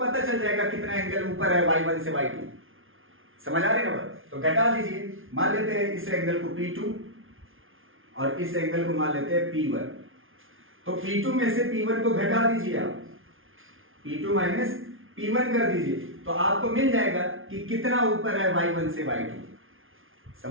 चल जाएगा कितना एंगल ऊपर है y1 से y2। समझ आ रही है ना बात? तो घटा दीजिए। मान लेते हैं इस एंगल को P2 और इस एंगल को मान लेते हैं P1। तो P2 में से P1 को घटा दीजिए आप, P2 माइनस P1 कर दीजिए तो आपको मिल जाएगा कि कितना ऊपर है y1 से y2।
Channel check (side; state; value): left; late; 0.59 ms